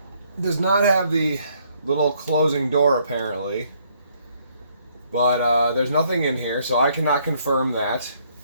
does not have the little closing door apparently, but there's nothing in here, so I cannot confirm that.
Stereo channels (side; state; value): both; inverted; correlation -0.68